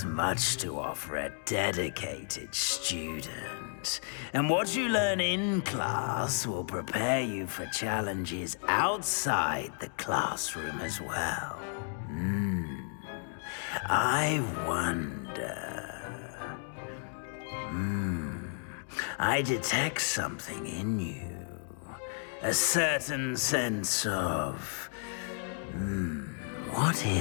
much to offer a dedicated student. And what you learn in class will prepare you for challenges outside the classroom as well. I wonder... I detect something in you. A certain sense of... what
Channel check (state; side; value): silent; right; 56 dB below the other